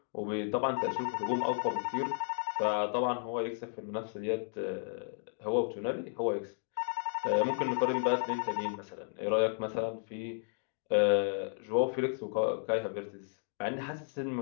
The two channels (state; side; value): silent; right; 55 dB below the other